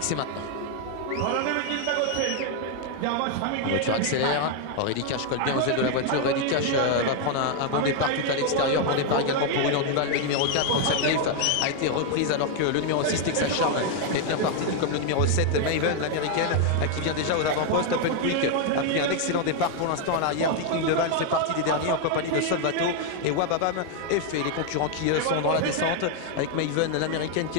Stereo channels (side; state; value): both; different; correlation 0.01